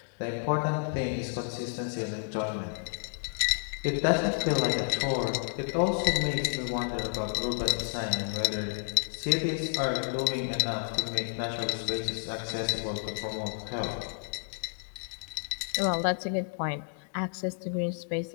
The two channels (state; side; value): silent; right; 57 dB below the other